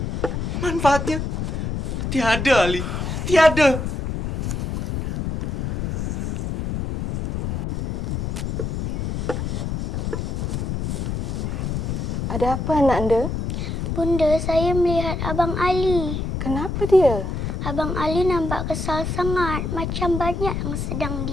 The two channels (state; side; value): noise; left; rumble, 2 dB below the sound